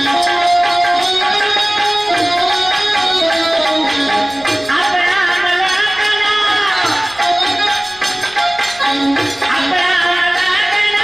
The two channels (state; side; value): noise; left; rumble, 25 dB below the sound